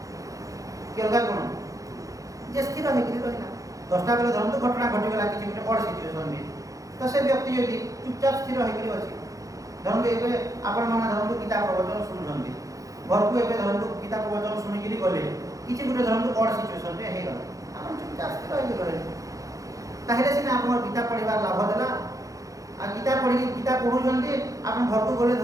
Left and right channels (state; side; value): late; left; 0.16 ms